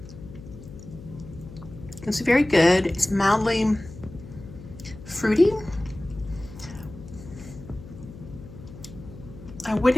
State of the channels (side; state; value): left; noise; hum, 15 dB below the sound